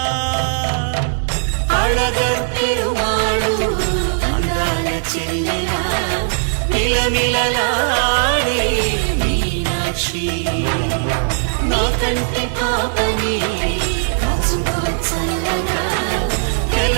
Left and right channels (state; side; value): silent; left; digital silence